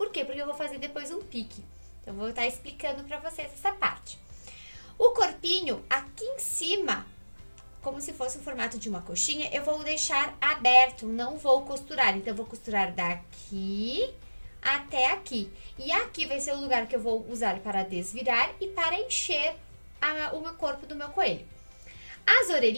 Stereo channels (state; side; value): inverted; both; correlation -1.00